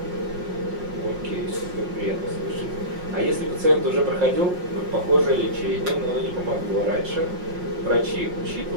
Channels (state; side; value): late; left; 5.6 ms